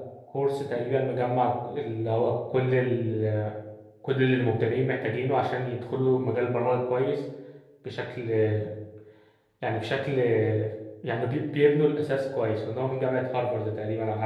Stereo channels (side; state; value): both; identical; correlation 1.00